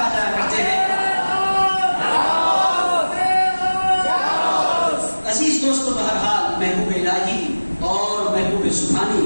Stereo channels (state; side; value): inverted; both; correlation -1.00